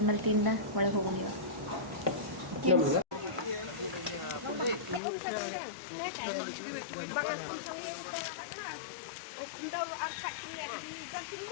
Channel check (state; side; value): drops out; right; at 5.0 s